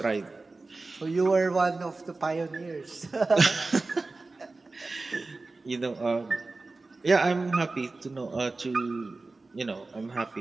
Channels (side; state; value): left; quieter; 3.5 dB